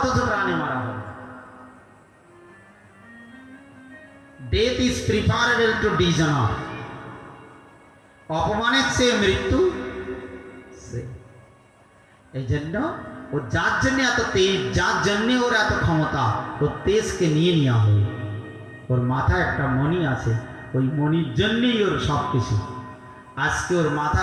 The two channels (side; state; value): both; identical; correlation 1.00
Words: প্রাণে মারা হবে। Death is preferable to dishonour. অপমানের চেয়ে মৃত্যু এই জন্য ও যার জন্য এত তেজ, যার জন্য ওর এত ক্ষমতা, ওর তেজকে নিয়ে নেওয়া হবে। ওর মাথায় একটা মণি আছে, ওই মণির জন্যই ওর সব কিছু। আজকে ওর